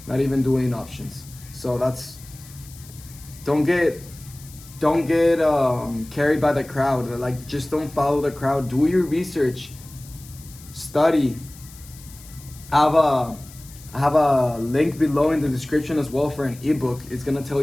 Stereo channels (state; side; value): noise; left; hiss, 20 dB below the sound